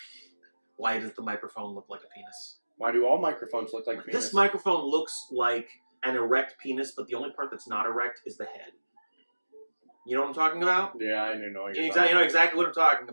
Why does the microphone look like a penis? Why do all microphones look like penis? This microphone looks like an erect penis, but the only part that's not erect is the head. You know what I'm talking about? Yeah, I know what you're You talking know exactly what I'm talking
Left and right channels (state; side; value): inverted; both; correlation -1.00